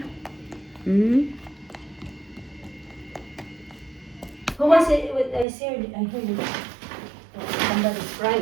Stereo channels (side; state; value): left; drops out; at 5.5 s